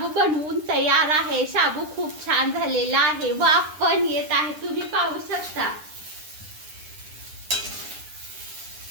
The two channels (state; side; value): late; left; 9.9 ms